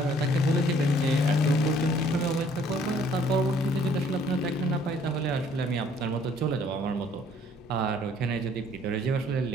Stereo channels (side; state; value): both; normal; correlation 0.60